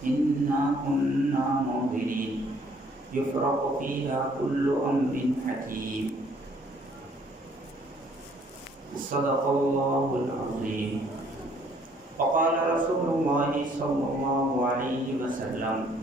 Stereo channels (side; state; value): both; normal; correlation 0.62